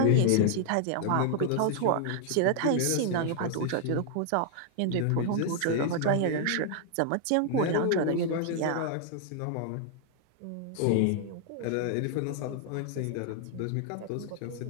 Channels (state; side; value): different; both; correlation 0.00